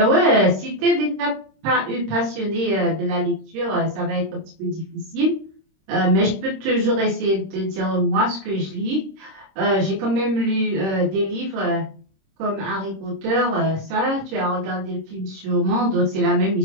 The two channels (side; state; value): left; late; 26 ms